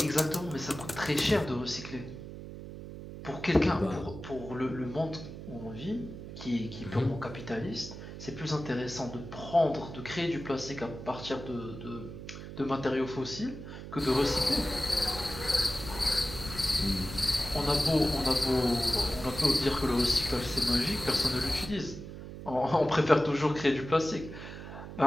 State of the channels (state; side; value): noise; right; hum, 11 dB below the sound